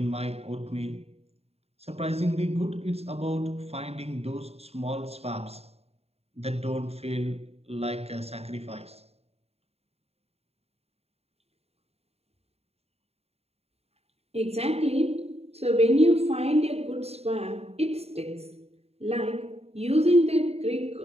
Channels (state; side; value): late; left; 0.30 ms